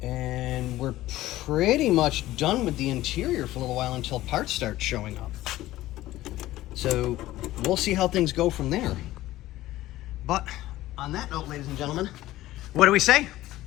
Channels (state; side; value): quieter; right; 15.9 dB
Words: And we're pretty much done with the interior for a little while until parts start showing up. So we'll see how things go from there. But on that note, ladies and gentlemen, what do we say?